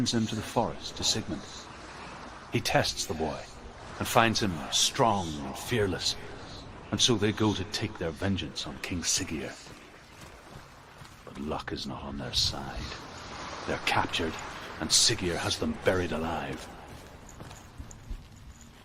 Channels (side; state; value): both; identical; correlation 1.00